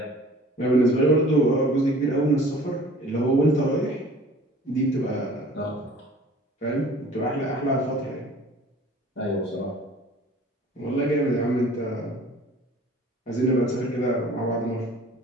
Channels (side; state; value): both; normal; correlation 0.48